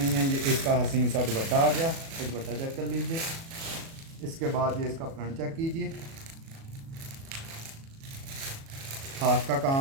है। ये इसका हसीन सा दुपट्टा आ गया। तो दुपट्टा चेक कर लीजिए। इसके बाद ये इसका फ्रंट चेक कीजिए। हाथ का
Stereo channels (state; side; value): late; left; 36 ms